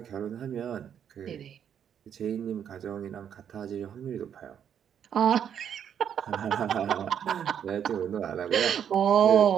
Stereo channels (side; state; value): left; quieter; 8.7 dB